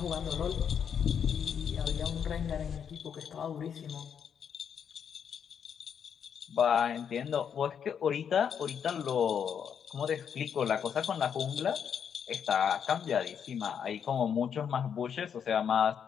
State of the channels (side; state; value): right; quieter; 7.7 dB